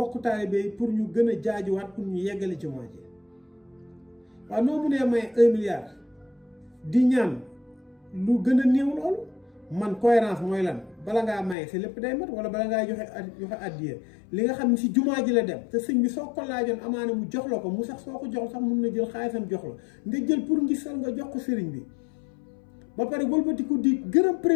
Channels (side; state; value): right; drops out; at 11.6 s